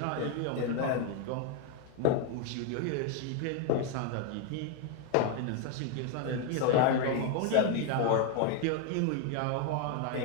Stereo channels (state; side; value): different; both; correlation 0.01